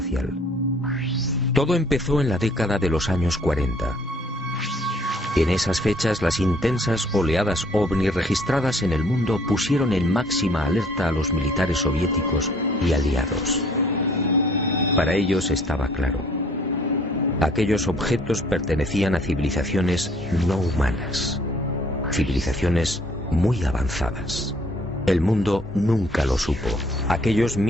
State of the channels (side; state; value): both; normal; correlation 0.60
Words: Todo empezó en la década de los años 40. En esas fechas, las intensas oleadas ovni registradas en el mundo pusieron en máxima alerta a los militares soviéticos y aliados. Para ellos estaba claro. Aquellos objetos pertenecían a civilizaciones no humanas. Civilizaciones muy avanzadas. El mundo nunca lo supo. Aquellos